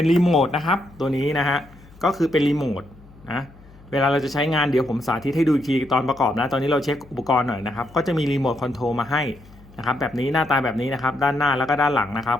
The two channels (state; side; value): noise; left; hum, 23 dB below the sound